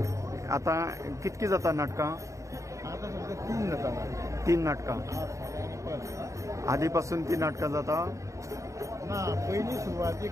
आतां कितकी जाता नाटकां? आता सध्या 3 जाता. 3 नाटकां. आदी पासून ती नाटकां जाता? ना, पयली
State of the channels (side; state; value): left; late; 0.15 ms